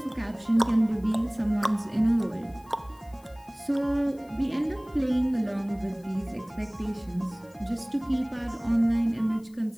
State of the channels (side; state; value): left; noise; hiss, 29 dB below the sound